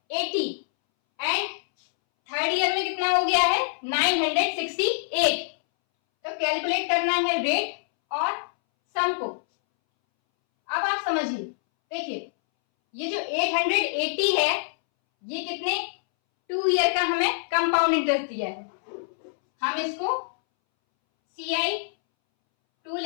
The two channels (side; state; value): right; silent; 61 dB below the other